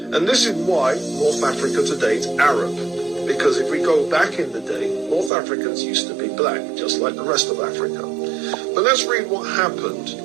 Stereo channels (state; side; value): drops out; left; at 5.3 s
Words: And this is why North Africa today is Arab, because if we go back in the day, North Africans used to be black, just like the rest of Africa. But let's read what happened.